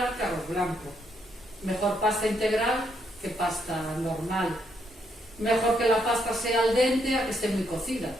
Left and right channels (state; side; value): normal; both; correlation 0.75